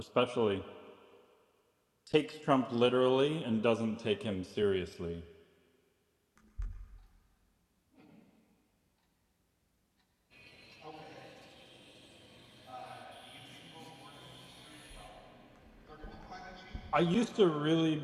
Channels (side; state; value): both; identical; correlation 1.00